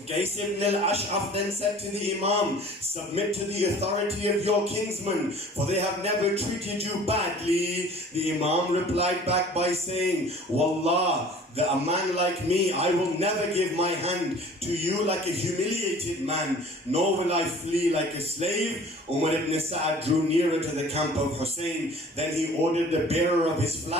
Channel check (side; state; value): both; normal; correlation 0.47